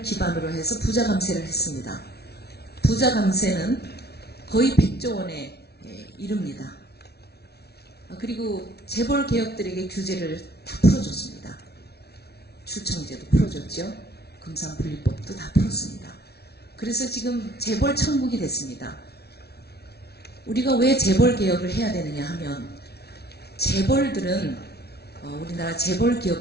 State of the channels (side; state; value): right; late; 0.47 ms